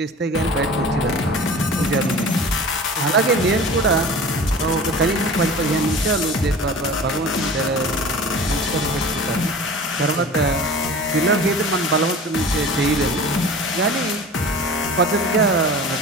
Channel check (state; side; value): normal; both; correlation 0.39